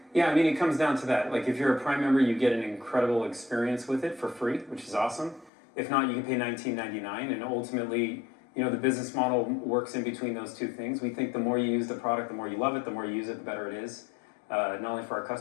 Yeah, I mean, it comes down to that. Like, if you're a Prime member, you get an incredible experience with it for free, which is awesome. If not, you can pay $19.99, and ultimately, you know, the business model works in between those two things. We think the more you use the product, the more you love it, the more you use it, the better it is, not only for our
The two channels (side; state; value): right; drops out; at 5.5 s